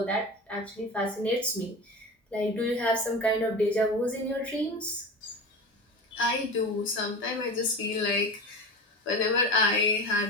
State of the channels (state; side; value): normal; both; correlation 0.29